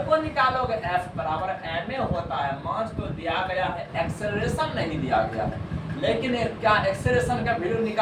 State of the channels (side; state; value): both; identical; correlation 1.00